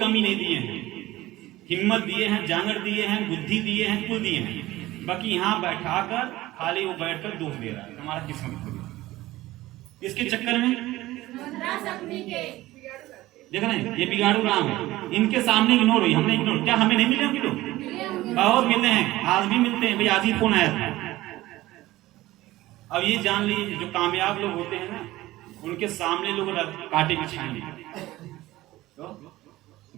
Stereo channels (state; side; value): quieter; left; 17.1 dB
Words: नहीं दिए हैं, हिम्मत दिए हैं, जांगर दिए हैं, बुद्धि दिए हैं, कुल दिए हैं। बाकी यहाँ बैठाकर खाली वो बैठकर दोष दे रहा है, हमारा किस्मत खुद। इसके चक्कर में देख रहे हैं ये बिगाड़ू राम है, इनके सामने इग्नोर हुई, हमने इग्नोर, क्या हमें नहीं मिले होंगे लोग? बहुत मिलते हैं, आज भी मिलते हैं। भाई आज ही फोन आया था। अब ये जान लीजिए जो कामयाब लोग होते हैं ना, उनके सामने लोग कांटे बिछाएंगे, तो